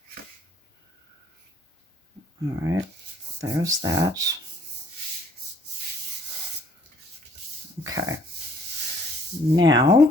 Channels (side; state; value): both; normal; correlation 0.61